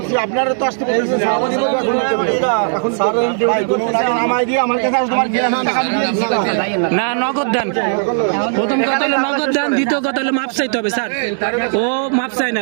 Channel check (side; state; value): left; silent; 69 dB below the other